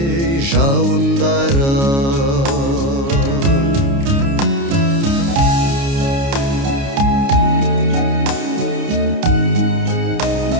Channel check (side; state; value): left; late; 29 ms